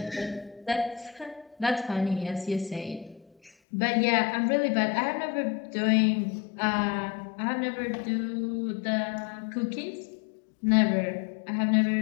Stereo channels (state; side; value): drops out; right; at 3.5 s